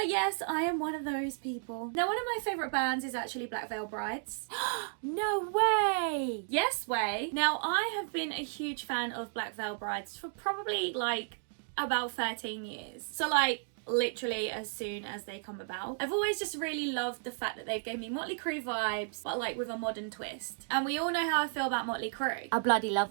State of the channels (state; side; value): silent; left; digital silence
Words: yes, I am one of those people. Now, one of my favourite bands is actually Black Veil Brides. No way! Yes way. Now, I have been a huge fan of Black Veil Brides for probably like about 13 years. So like, literally as soon as they come about. I've always just really loved the fact that they gave me Motley Crue vibes, but like with a modern twist. And we all know how I feel about Motley Crue. I bloody love